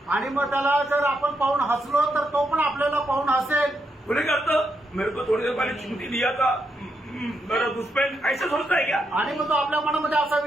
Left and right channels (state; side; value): normal; both; correlation 0.81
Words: आणि मग त्याला जर आपण पाहून हसलो तर तो पण आपल्याला पाहून हसेल. बोले करता मेरे को थोड़ी देर पहले चिमटी दिया था, मेरा दुश्मन ऐसा सोचता है क्या? आणि मग तो आपल्या मनामध्ये असा